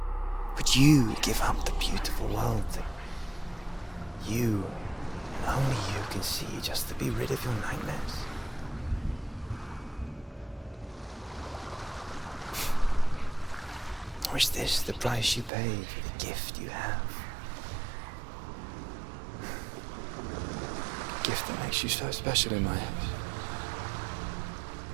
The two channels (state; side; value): drops out; left; at 15.5 s